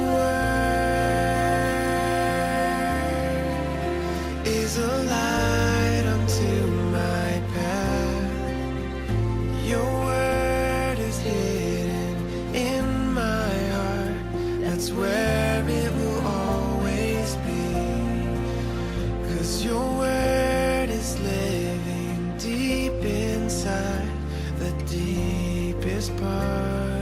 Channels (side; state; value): both; identical; correlation 1.00